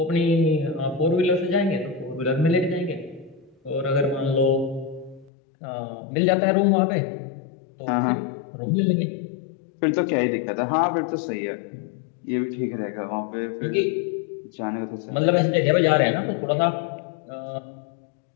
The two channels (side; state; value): right; drops out; at 5.3 s